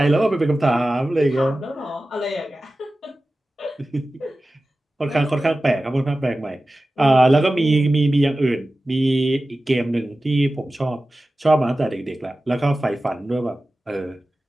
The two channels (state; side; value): normal; both; correlation 0.95